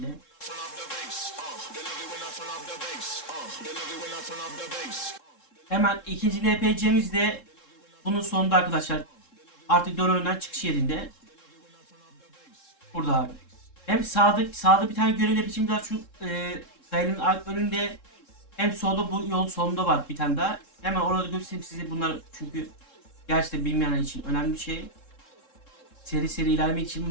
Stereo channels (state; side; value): late; right; 3.7 ms